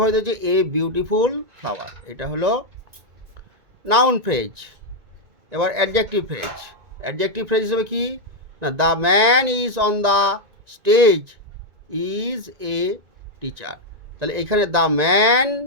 হচ্ছে? এ বিউটিফুল ফ্লাওয়ার, এটা হলো নাউন ফ্রেজ। এবার অ্যাডজেক্টিভ ফ্রেজ। অ্যাডজেক্টিভ ফ্রেজ হিসেবে কি না, the man is on the stage is a teacher. তাহলে এখানে the man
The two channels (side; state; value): left; late; 1.9 ms